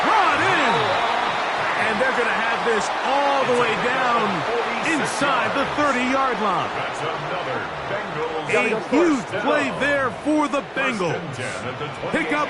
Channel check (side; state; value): both; identical; correlation 1.00